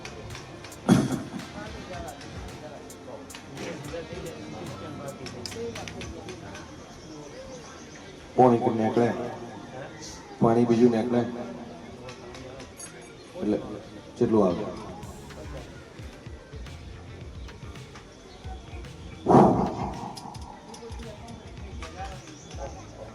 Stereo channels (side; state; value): both; identical; correlation 1.00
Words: પાણી નીકળે, પાણી બીજું નીકળે એટલે કેટલું આવે?